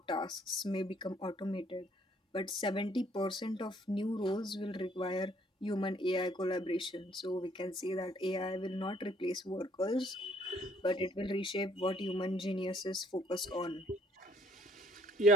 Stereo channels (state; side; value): normal; both; correlation 0.63